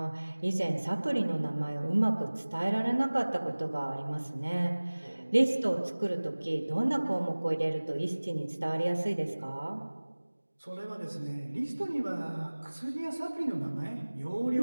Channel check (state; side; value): inverted; both; correlation -1.00